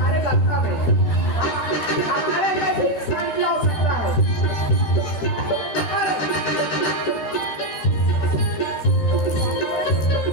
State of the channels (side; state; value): right; late; 13 ms